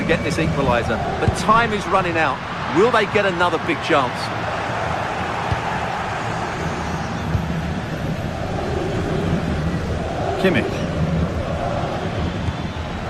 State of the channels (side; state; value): both; identical; correlation 1.00